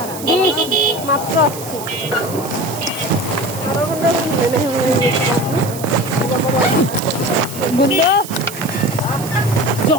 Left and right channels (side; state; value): right; noise; hiss, 12 dB below the sound